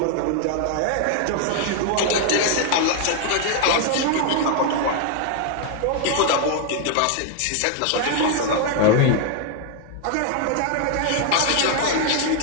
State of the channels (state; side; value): different; both; correlation 0.00